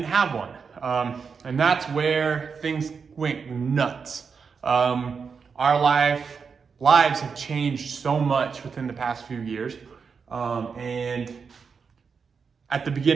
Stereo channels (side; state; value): left; quieter; 5.7 dB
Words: have one. And that's where things went nuts. Our lives have changed so much within the past few years. And at the